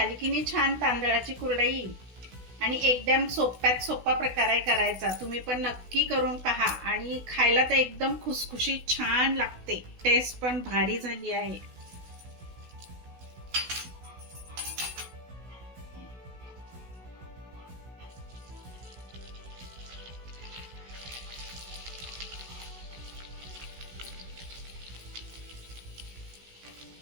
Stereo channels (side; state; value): left; late; 16 ms